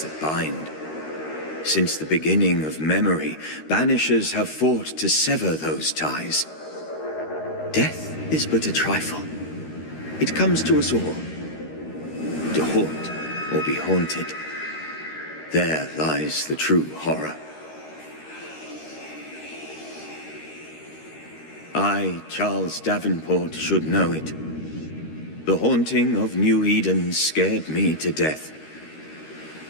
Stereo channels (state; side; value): late; right; 13 ms